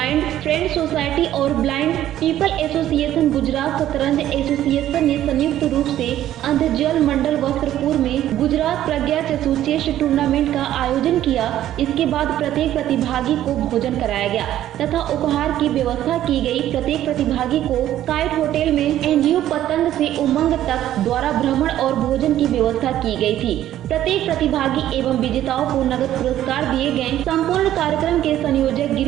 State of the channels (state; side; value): quieter; left; 12.5 dB